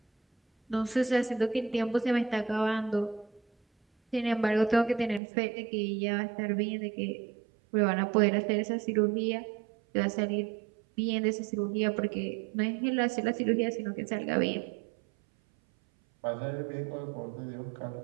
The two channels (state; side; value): drops out; left; at 5.2 s